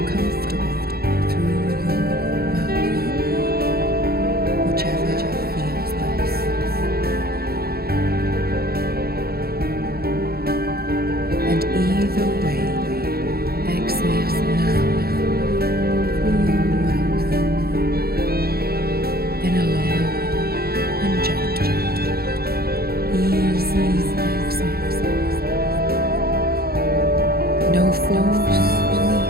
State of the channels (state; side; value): late; left; 0.45 ms